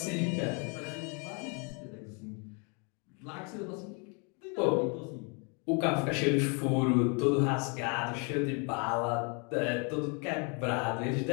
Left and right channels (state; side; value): quieter; right; 35.1 dB